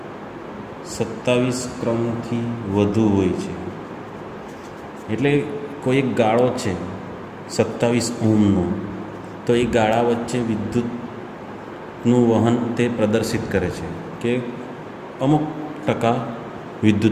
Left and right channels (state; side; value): identical; both; correlation 1.00